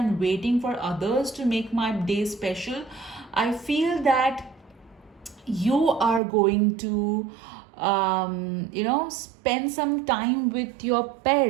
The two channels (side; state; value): left; drops out; at 6.2 s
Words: waiting for others to make my day special, I feel that you are going to spend some time with your